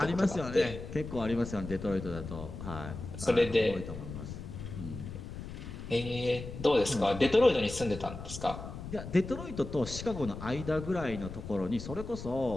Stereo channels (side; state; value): left; noise; rumble, 9 dB below the sound